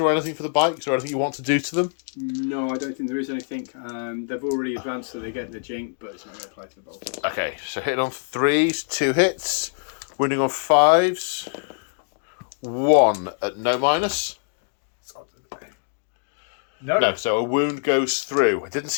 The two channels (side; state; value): right; silent; digital silence